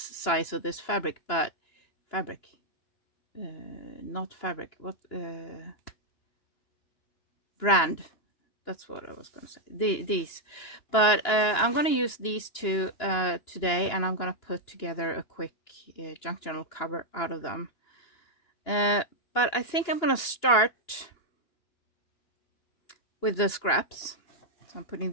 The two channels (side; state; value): right; late; 2.9 ms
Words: of this fabric, but fabric, not fabric, what, brand, that's what I was gonna say, these, but I'm gonna use these 2 today, and I'm gonna put together a quick junk journal cover out of them, but I think I'm gonna start with the scraps. So I'm putting